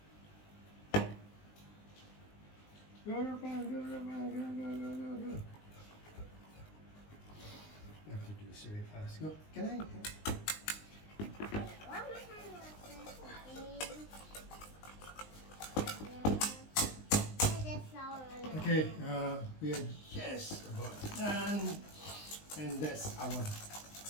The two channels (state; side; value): late; right; 19 ms